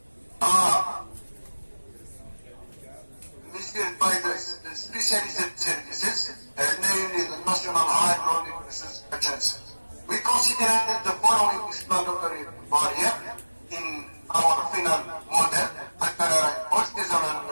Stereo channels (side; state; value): both; inverted; correlation -1.00